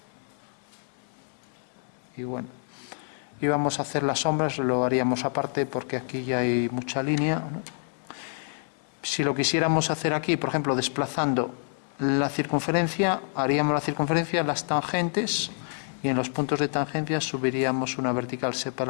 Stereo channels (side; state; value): right; silent; 59 dB below the other